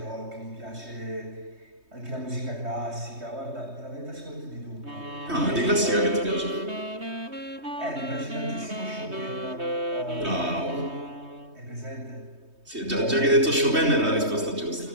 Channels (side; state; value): left; late; 3.2 ms